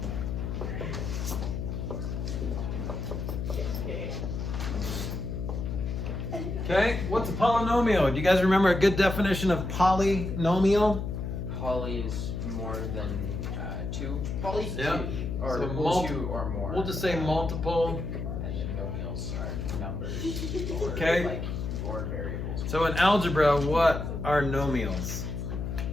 Okay, what's a polynomial? Do you guys remember a good definition of polynomial? Poly is more than two. Poly Yeah. two, or So equal to or more. We'll just say multiple. And then nomials are numbers. Or Okay. Like, or variables. So in algebra, what are nomials?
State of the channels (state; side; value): noise; left; hum, 4 dB below the sound